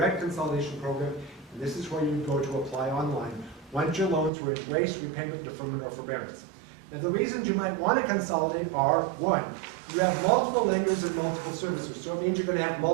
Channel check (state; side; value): drops out; left; at 4.3 s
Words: Consolidation Program, and this is where you would go to apply online once your loans were in race, repayment, deferment, or forbearance. Now, the reasons you might want to consolidate are, one, you have multiple lenders and multiple servicers, so it means you're going to have